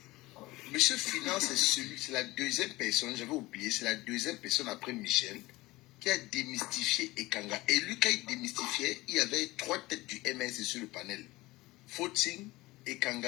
Monsieur Finance, c'est la deuxième personne, j'avais oublié, c'est la deuxième personne après Michel qui a démystifié Ekanga. Et lui, quand il démystifiait, il y avait 3 têtes du MS sur le panel. Footing,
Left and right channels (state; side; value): quieter; right; 19.9 dB